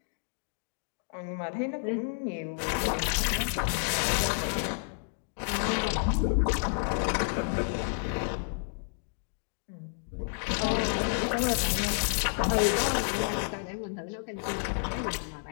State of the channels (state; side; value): silent; right; digital silence